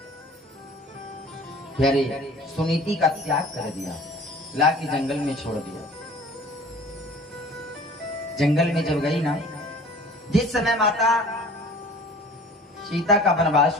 प्यारे सुनीति का त्याग कर दिया, ला के जंगल में छोड़ दिया। जंगल में जब गई ना, जिस समय माता सीता का वनवास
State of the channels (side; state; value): both; normal; correlation 0.46